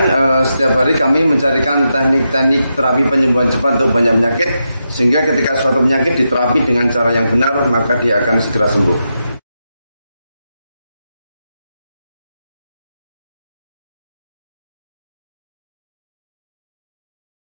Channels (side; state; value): both; inverted; correlation -0.86